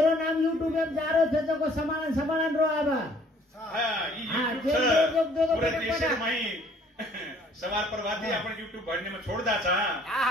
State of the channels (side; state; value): both; normal; correlation 0.58